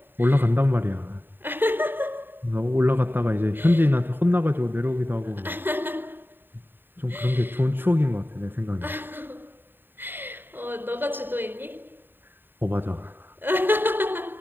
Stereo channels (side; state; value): left; late; 0.095 ms